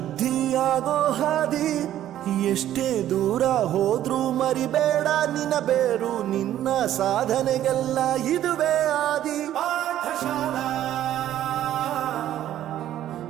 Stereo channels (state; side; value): quieter; left; 12.2 dB